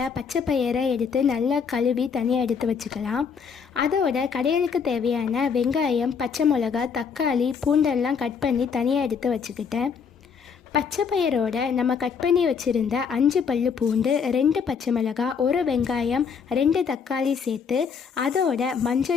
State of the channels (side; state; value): right; quieter; 6.3 dB